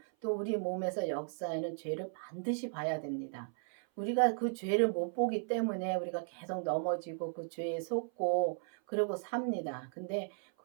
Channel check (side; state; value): left; silent; 54 dB below the other